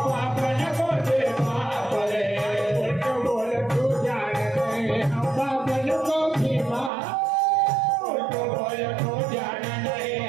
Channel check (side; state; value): left; drops out; at 6.9 s